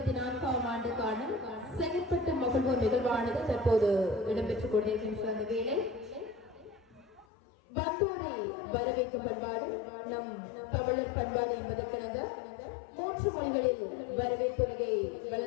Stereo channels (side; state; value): right; drops out; at 7.2 s